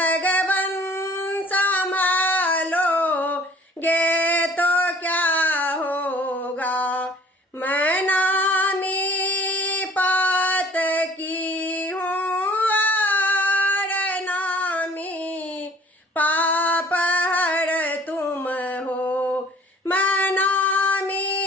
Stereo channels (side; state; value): both; normal; correlation 0.53